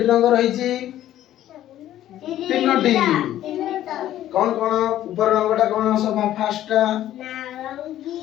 রঙ রহিছি তিনটি কোন কোন উপর রঙটা কোন সব ফার্স্টটা নারঙ্গী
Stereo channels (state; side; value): quieter; right; 12.8 dB